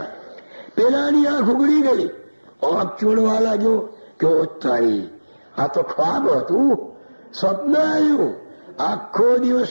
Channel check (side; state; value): both; inverted; correlation -1.00